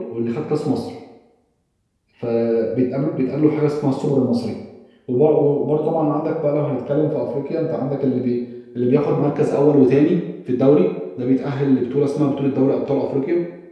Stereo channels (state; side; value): identical; both; correlation 1.00